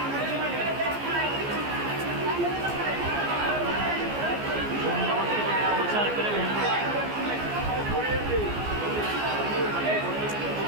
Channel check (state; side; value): late; left; 14 ms